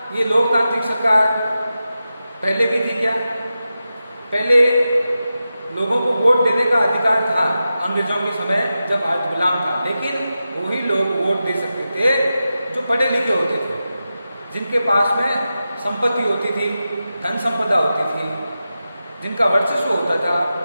ये लोकतांत्रिक सरकार पहले भी थी क्या? पहले लोगों को वोट देने का अधिकार था अंग्रेजों के समय जब आज गुलाम था, लेकिन वही लोग वोट दे सकते थे जो पढ़े लिखे होते थे, जिनके पास में संपत्ति होती थी, धन संपदा होती थी, जिनका वर्चस्व होता था,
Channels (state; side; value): inverted; both; correlation -0.92